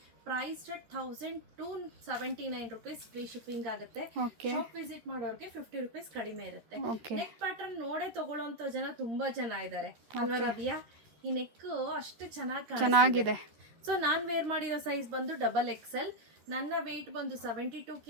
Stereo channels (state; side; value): late; left; 13 ms